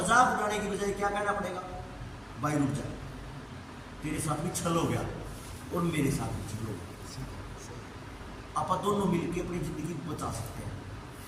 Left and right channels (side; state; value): both; identical; correlation 1.00